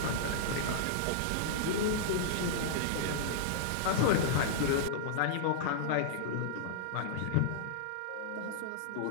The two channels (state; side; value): different; both; correlation -0.02